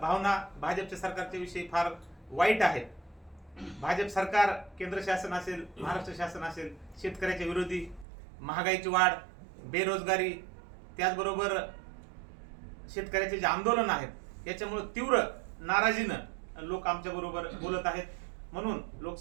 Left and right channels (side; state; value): left; drops out; at 8.1 s